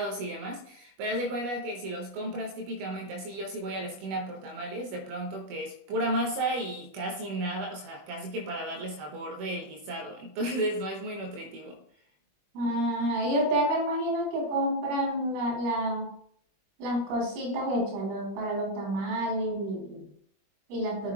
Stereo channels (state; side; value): late; left; 21 ms